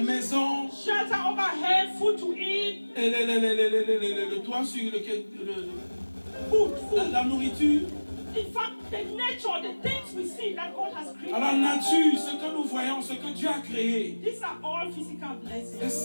shelter overhead, food to eat, et le toit sur lequel food. la nourriture. In fact, the nature, the things we see that God has created. Alors la nature, ce que nous voyons, ce que Dieu a créé, These are all physical et blessings.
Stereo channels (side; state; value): both; inverted; correlation -1.00